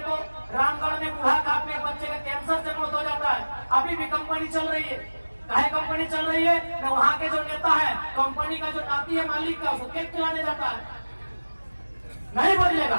रामगढ़ में बूढ़ा काट में बच्चे का कैंसर से मौत हो जाता है, अभी भी कंपनी चल रही है। काहे कंपनी चल रही है? न वहां के जो नेता है, कंपनी का जो नाती है मालिक का, उसको केक खिलाने जाता है। नहीं बदलेगा।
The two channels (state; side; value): inverted; both; correlation -1.00